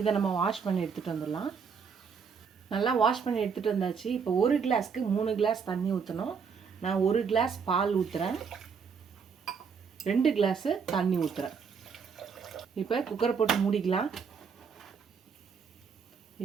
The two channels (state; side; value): quieter; left; 6.1 dB